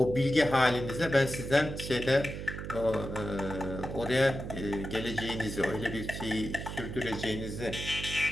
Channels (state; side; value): noise; right; hum, 7 dB below the sound